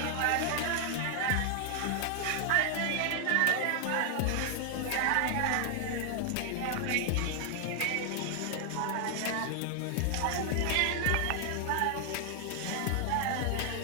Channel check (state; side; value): different; both; correlation 0.00